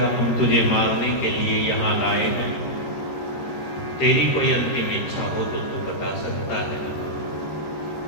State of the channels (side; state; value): right; late; 13 ms